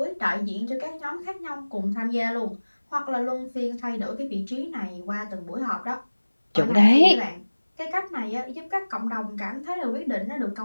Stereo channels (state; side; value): inverted; both; correlation -1.00